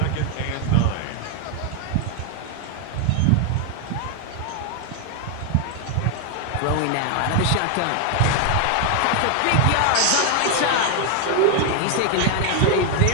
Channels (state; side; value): different; both; correlation 0.00